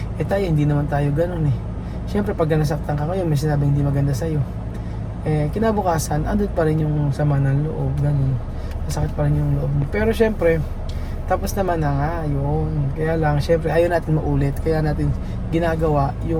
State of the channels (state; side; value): identical; both; correlation 1.00